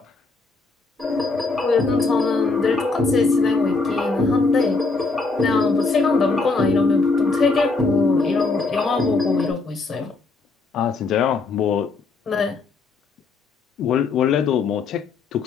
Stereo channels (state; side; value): quieter; right; 3.9 dB